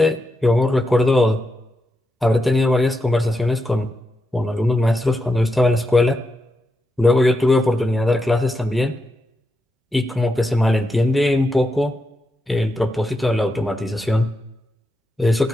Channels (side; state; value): both; normal; correlation 0.86